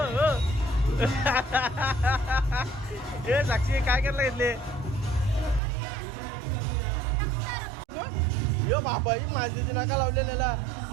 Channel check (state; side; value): drops out; left; at 5.6 s